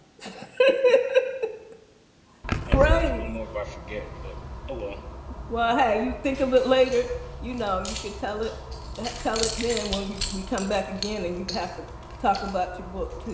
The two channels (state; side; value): identical; both; correlation 1.00